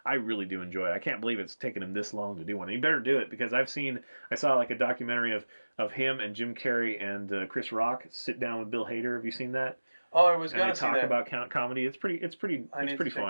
I really do enjoy it. I can't believe it's taken him this long to do one. He better do it because I saw like a documentary of him and Jim Carrey and Chris Rock sit down with Bill Hader. Have you seen that? Oh, I was going to see that. And they talk about comedy. It's pretty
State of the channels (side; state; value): both; inverted; correlation -1.00